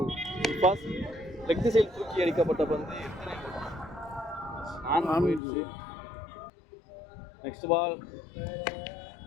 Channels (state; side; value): drops out; right; at 5.4 s